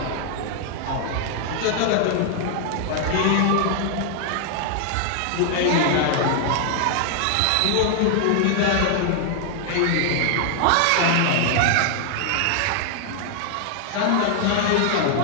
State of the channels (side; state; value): both; different; correlation 0.00